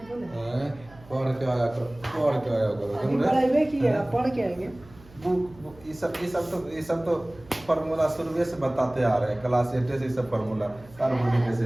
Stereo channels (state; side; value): noise; right; hum, 23 dB below the sound